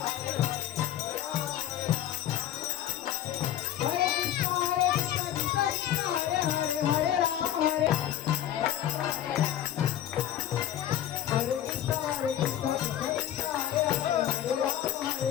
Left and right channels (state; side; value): quieter; right; 11.4 dB